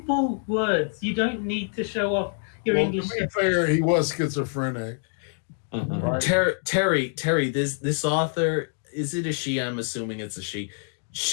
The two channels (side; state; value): right; silent; 61 dB below the other